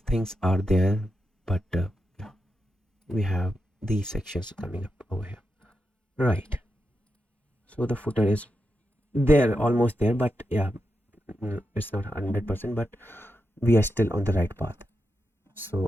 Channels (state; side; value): normal; both; correlation 0.87